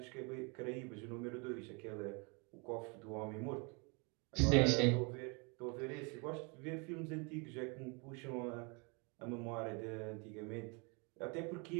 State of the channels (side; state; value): left; quieter; 32.1 dB